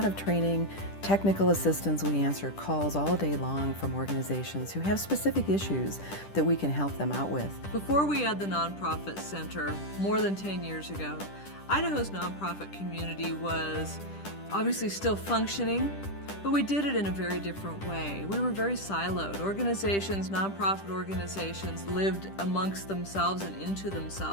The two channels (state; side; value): late; right; 10 ms